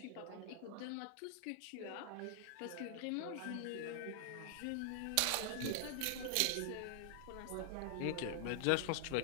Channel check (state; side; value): different; both; correlation 0.00